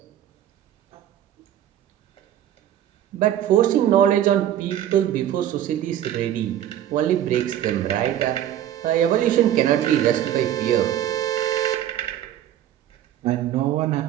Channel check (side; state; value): left; quieter; 11.5 dB